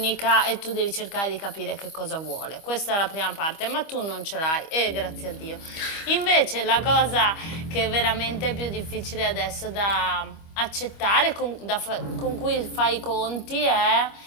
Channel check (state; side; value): late; right; 25 ms